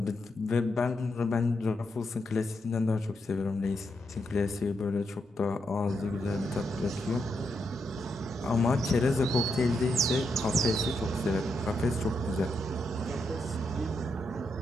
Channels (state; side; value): normal; both; correlation 0.82